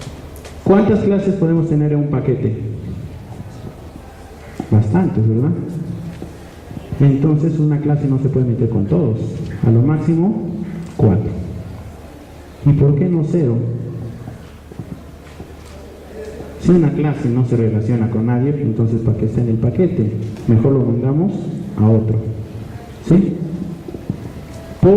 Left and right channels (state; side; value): identical; both; correlation 1.00